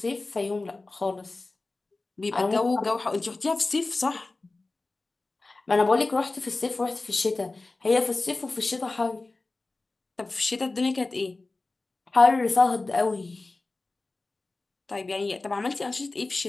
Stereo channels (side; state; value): right; quieter; 3.3 dB